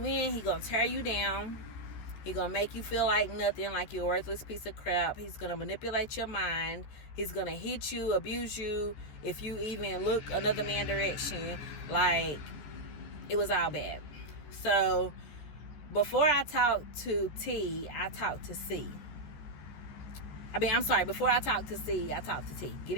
in, he gonna tear you down. He gonna make you feel like nothing, like you're a worthless piece of crap. He's gonna manipulate your mind. He's gonna hit you, abuse you if you even look another man's direction. Like, it was all bad. So before I talked to T, I talked to C. Before I talked to C, I talked to T. Get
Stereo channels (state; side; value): late; right; 14 ms